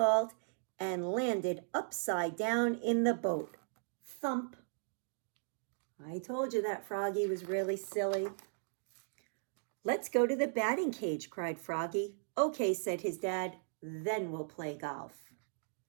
and landed upside down in the boat. Thump. I told you that Froggy was really silly. Let's go to the batting cage, cried Froggy. Okay, said his dad, then we'll play golf.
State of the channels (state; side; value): silent; left; digital silence